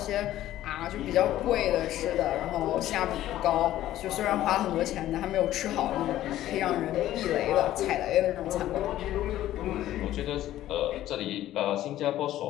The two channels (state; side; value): quieter; right; 13.6 dB